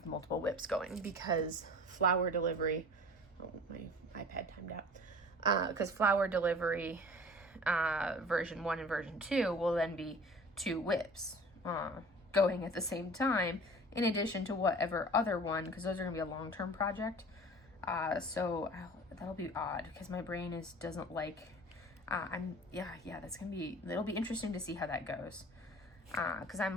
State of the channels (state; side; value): normal; both; correlation 0.43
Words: multiple WIPs going because flower delivery, oh, my iPad timed out. Because flower delivery version 1 and version 2 will then be 2 WIPs going at the same time, in addition to whatever other one, because those are going to be a long-term project. So that'll be odd because my brain doesn't like, that's going to be, it'll be interesting to see how that goes. Cause I'm